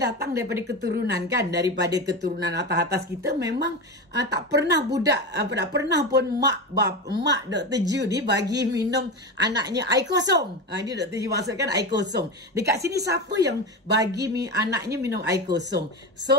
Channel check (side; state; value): both; normal; correlation 0.21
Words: datang daripada keturunan kan, daripada keturunan atas-atas kita memang tak pernah tak pernah pun mak Dr. Ju ni bagi minum anaknya air kosong. Ini Dr. Ju maksudkan air kosong. Dekat sini siapa yang bagi anaknya minum air kosong?